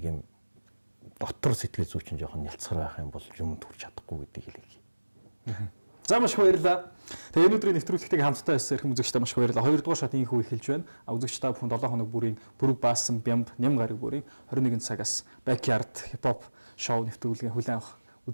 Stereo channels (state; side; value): inverted; both; correlation -1.00